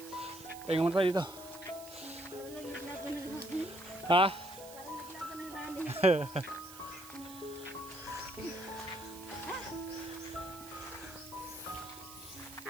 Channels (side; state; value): right; noise; hiss, 16 dB below the sound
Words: Pahinga muna tayo dito. Parang naglaban ng rani. Ha? Parang naglaban ng rani.